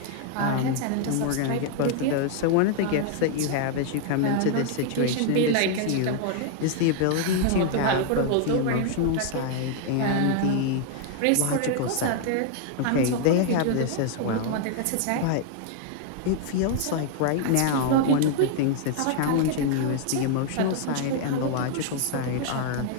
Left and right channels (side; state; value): both; different; correlation 0.00